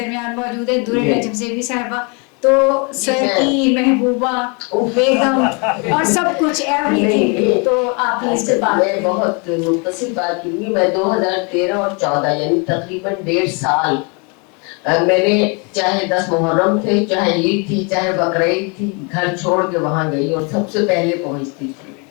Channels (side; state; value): right; quieter; 32.9 dB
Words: موجود ہے, درے نجم زیبی صاحبہ. تو سر کی محبوبہ بیگم اور سب کچھ ایوری تھنگ. تو آپ اس سے بات, میں بہت مختصر بات کروں گی. میں 2013 اور 14 یعنی تقریباً 1.5 سال میں نے, چاہے 10 محرم تھے, چاہے عید تھی, چاہے بقرعید تھی, گھر چھوڑ کے وہاں گئی اور سب سے پہلے پہنچتی تھی.